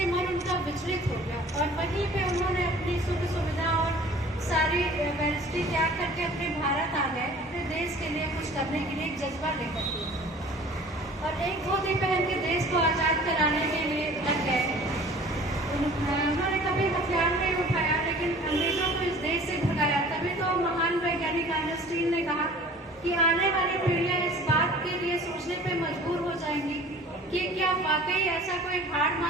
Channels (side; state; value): both; normal; correlation 0.47